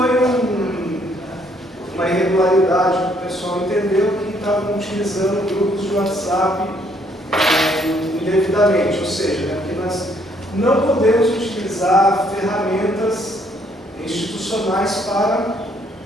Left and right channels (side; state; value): both; normal; correlation 0.67